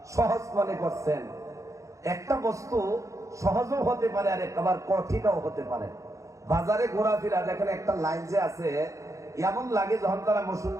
সহজ মনে করছেন? একটা বস্তু সহজও হতে পারে আর একবার কঠিনও হতে পারে। বাজারে ঘোরাফেরা দেখেন, একটা লাইন যে আছে, এমন লাগে যখন তারা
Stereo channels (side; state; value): left; late; 0.15 ms